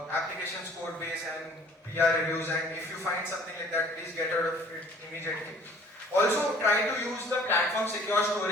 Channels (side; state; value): both; normal; correlation 0.53